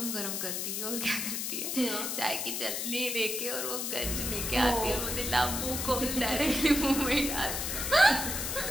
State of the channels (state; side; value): noise; left; hiss, 2 dB below the sound